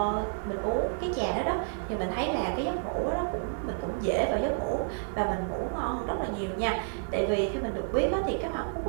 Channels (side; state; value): left; silent; 58 dB below the other